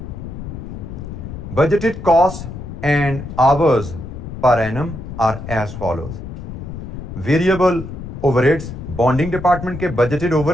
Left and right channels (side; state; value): left; noise; rumble, 9 dB below the sound